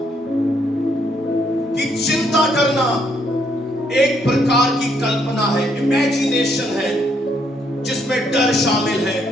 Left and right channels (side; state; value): both; normal; correlation 0.72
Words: कि चिंता करना एक प्रकार की कल्पना है, इमेजिनेशन है, जिसमें डर शामिल है।